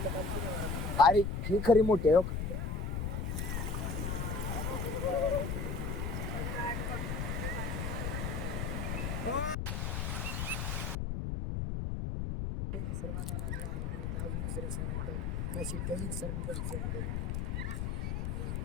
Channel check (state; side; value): noise; left; rumble, 1 dB below the sound